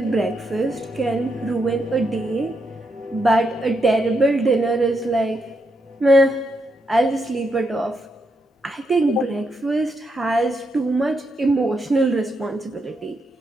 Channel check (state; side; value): normal; both; correlation 0.81